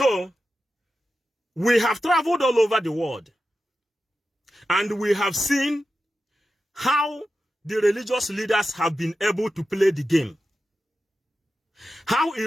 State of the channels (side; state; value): both; normal; correlation 0.91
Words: we have traveled all over the world, and we have seen how the religious leaders have been able to play the game. How